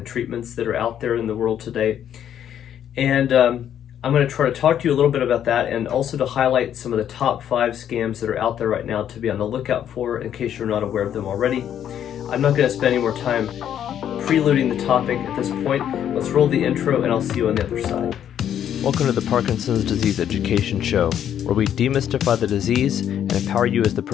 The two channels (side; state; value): right; quieter; 9.9 dB